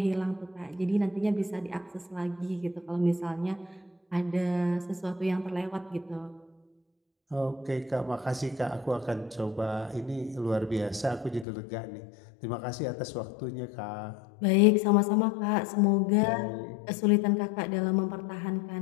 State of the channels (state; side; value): drops out; right; at 11.5 s